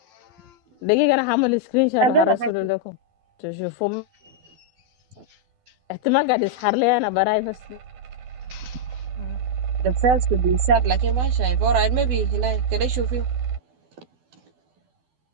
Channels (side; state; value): left; late; 12 ms